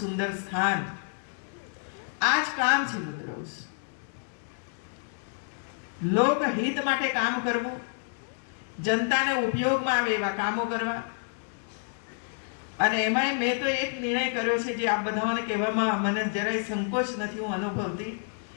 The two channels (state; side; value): silent; right; 59 dB below the other